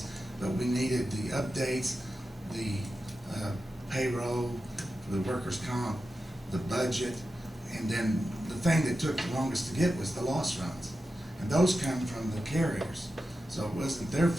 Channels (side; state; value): both; normal; correlation 0.91